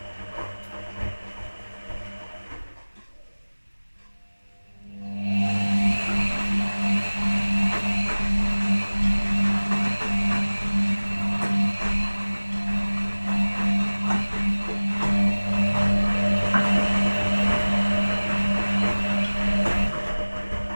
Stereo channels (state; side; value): inverted; both; correlation -1.00